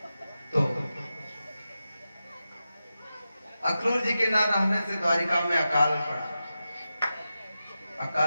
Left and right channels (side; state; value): both; inverted; correlation -0.91